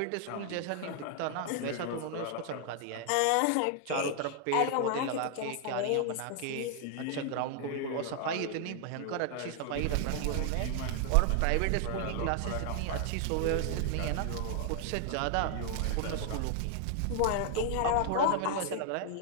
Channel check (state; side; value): different; both; correlation 0.00